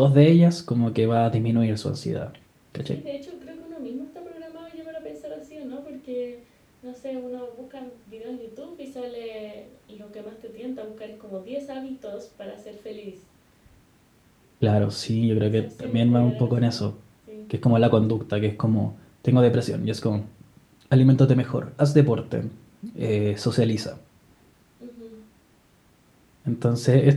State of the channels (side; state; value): both; identical; correlation 1.00